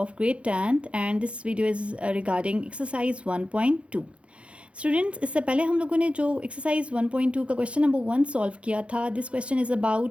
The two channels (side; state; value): left; late; 0.060 ms